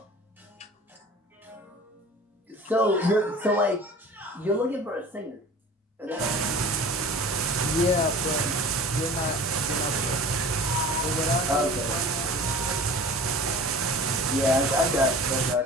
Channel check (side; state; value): both; normal; correlation 0.41